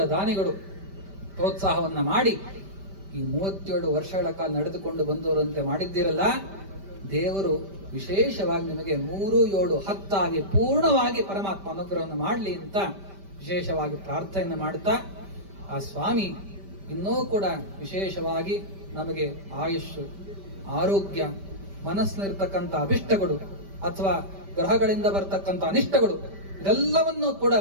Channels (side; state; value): left; late; 5.1 ms